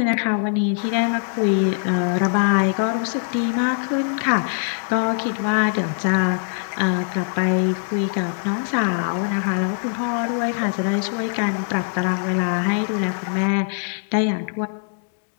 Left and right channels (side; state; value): right; silent; digital silence